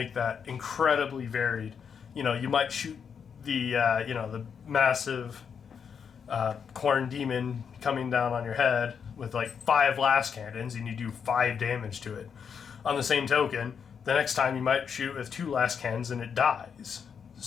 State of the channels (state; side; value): quieter; right; 6.9 dB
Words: that incredibly varied. You might shoot the massive corn demon coming down on your head with 5 last cannons, and you do 5 damage to it. On the same token, the next time you might shoot with 2 last cannons and it dies.